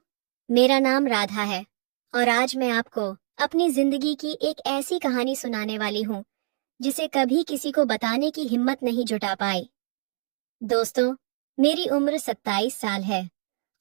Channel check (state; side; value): silent; left; digital silence